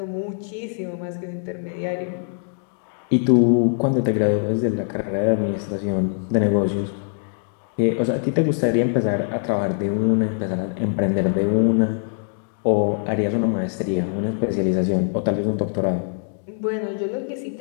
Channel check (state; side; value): silent; right; digital silence